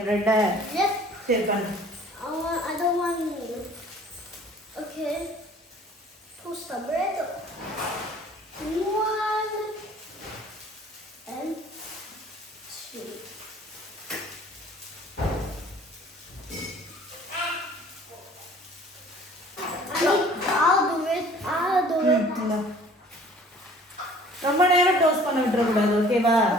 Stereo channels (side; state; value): both; normal; correlation 0.52